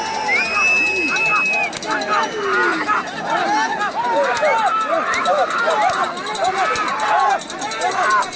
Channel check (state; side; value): identical; both; correlation 1.00